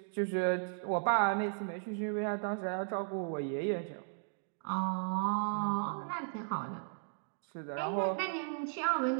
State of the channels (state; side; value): silent; left; digital silence